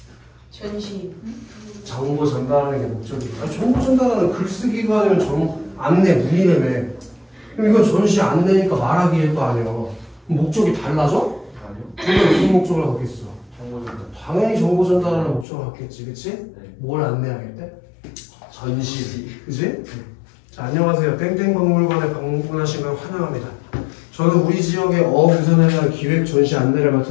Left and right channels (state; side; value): drops out; right; at 15.5 s